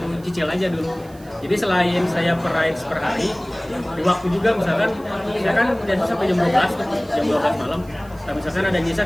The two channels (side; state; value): right; noise; hiss, 26 dB below the sound